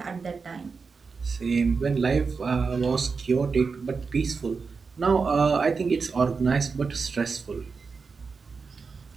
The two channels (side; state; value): left; quieter; 4.9 dB